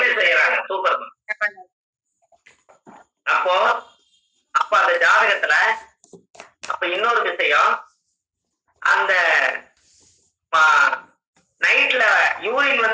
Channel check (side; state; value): both; identical; correlation 1.00